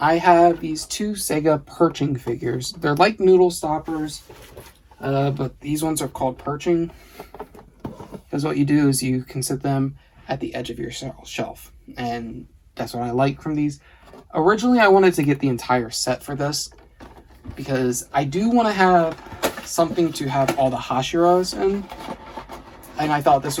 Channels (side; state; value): both; identical; correlation 1.00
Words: have these 2 Sega Perching figures. They're like noodle stoppers, but these ones are called Perching. Because what you do is you can sit them at the edge of your shelf. And that's what I like from these. Originally, I wanted to get the entire set for this, because I do want to have something to have all the Hashiras in. And I thought this